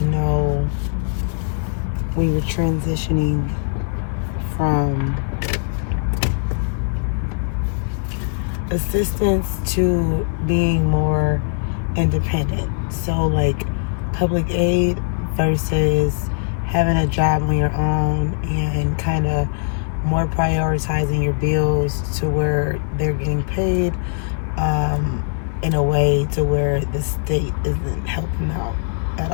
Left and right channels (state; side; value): silent; right; 65 dB below the other